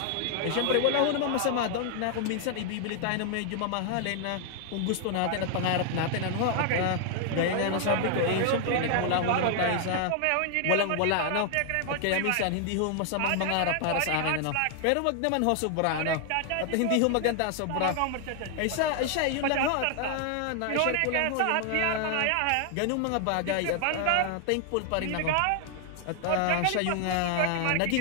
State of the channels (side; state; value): both; different; correlation 0.00